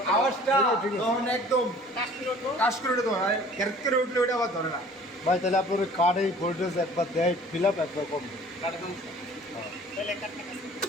আওয়াজটা তখন একদম কাজ করে উঠে ধরে ক্যারেক্ট করে উঠলে ওটা আবার ধরে না। ভাই তাহলে আপনার কার্ডে ভোল্টেজ একবার দেয় ফিল আপ একবার কম কাটে সমস্যা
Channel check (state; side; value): normal; both; correlation 0.50